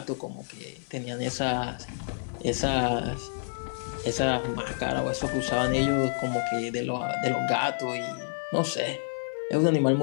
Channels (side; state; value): right; silent; digital silence